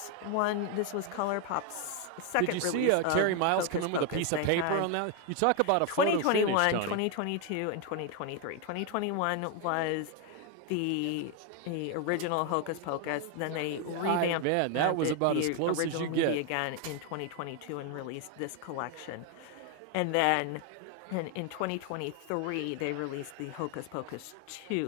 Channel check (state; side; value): different; both; correlation 0.01